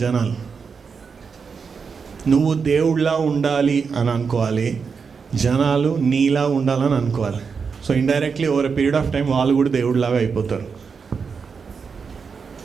జనాలు. నువ్వు దేవుడిలా ఉండాలి అని అనుకోవాలి, జనాలు నీలా ఉండాలని అనుకోవాలి. So indirectly over a period of time వాళ్ళు కూడా దేవుడిలాగా అయిపోతారు.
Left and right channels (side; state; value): left; quieter; 5.6 dB